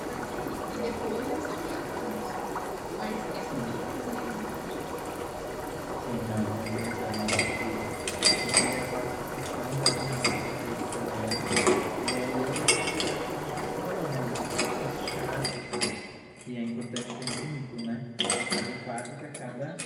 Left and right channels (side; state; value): both; identical; correlation 1.00